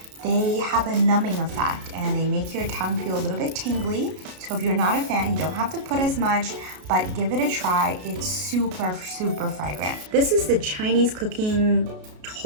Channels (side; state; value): left; late; 33 ms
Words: They have a numbing effect and they make your tongue feel a little bit tingly. So if you're not a fan, you don't have to put as much, but give it a try. It's super, super fragrant. This is the Chinese cooking